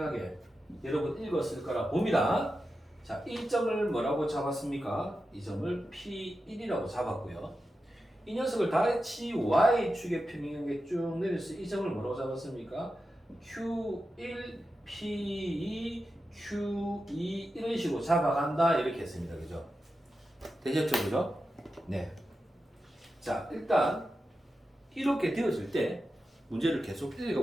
여러분 읽었을 거라 봅니다. 자, 이 점을 뭐라고 잡았습니까? 이 점을 P1이라고 잡았고요. 이 녀석을 다시 Y축에 평행하게 쭉 내려서 이 점을 뭐라고 잡았습니까? Q1, P2, Q2 이런 식으로 잡아간다 이렇게 했습니다. 그죠? 되셨죠? 그죠? 네. 자, 일단 이렇게 되어질 때 문제를 계속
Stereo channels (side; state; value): both; normal; correlation 0.91